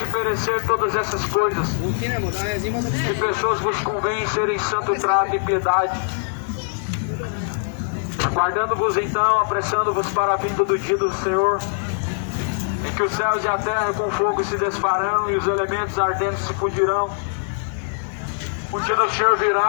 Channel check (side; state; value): right; silent; 64 dB below the other